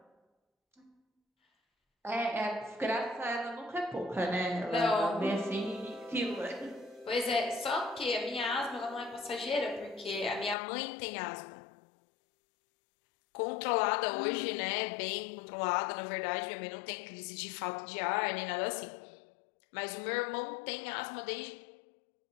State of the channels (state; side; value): drops out; right; at 10.6 s